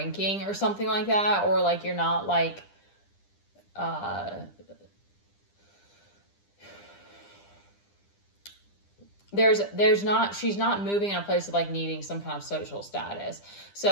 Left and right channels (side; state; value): right; late; 10 ms